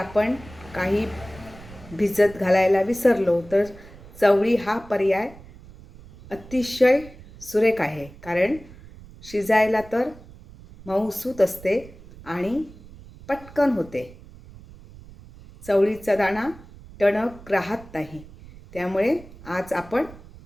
काही भिजत घालायला विसरलो तर चवळी हा पर्याय अतिशय सुरेख आहे, कारण शिजायला तर मऊसूत असते आणि पटकन होते। चवळीचा दाणा टणक राहत नाही, त्यामुळे आज आपण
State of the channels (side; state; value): right; noise; rumble, 19 dB below the sound